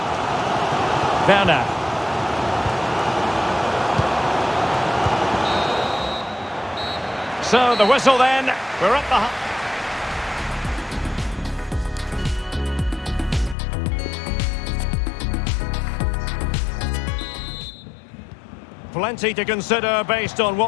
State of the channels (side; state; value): right; drops out; at 13.6 s